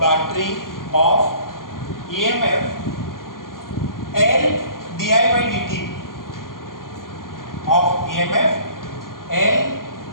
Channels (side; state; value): right; late; 0.91 ms